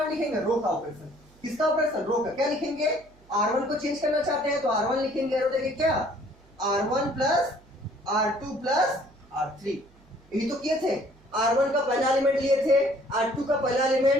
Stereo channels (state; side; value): noise; right; hum, 28 dB below the sound